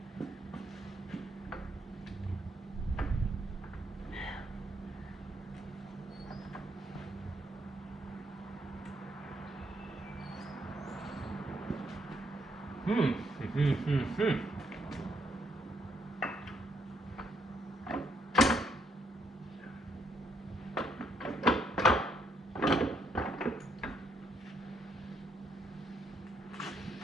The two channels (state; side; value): normal; both; correlation 0.73